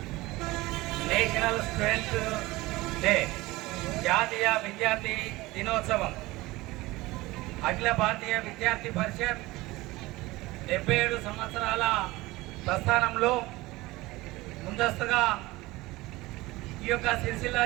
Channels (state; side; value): quieter; left; 20.0 dB